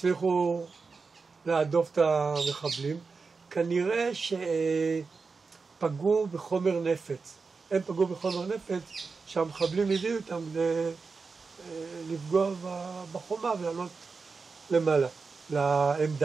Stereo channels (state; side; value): quieter; left; 4.6 dB